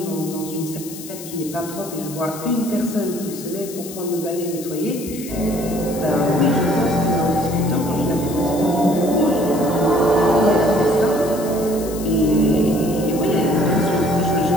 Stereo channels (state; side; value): noise; left; hiss, 13 dB below the sound